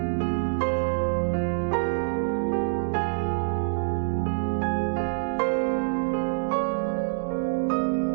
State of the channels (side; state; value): left; silent; digital silence